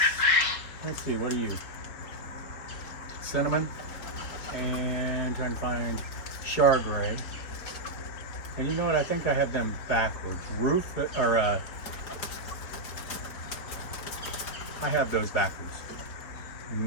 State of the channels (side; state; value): right; late; 4.6 ms